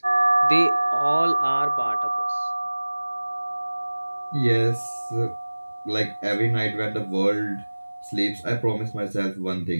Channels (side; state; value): both; inverted; correlation -1.00